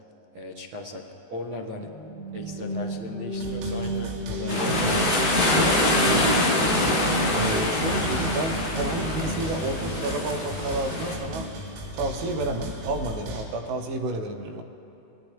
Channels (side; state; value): left; late; 18 ms